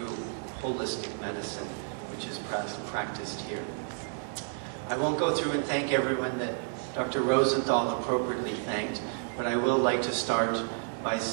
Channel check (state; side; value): silent; left; digital silence